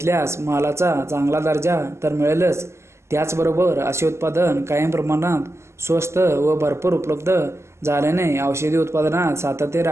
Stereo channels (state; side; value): late; left; 0.13 ms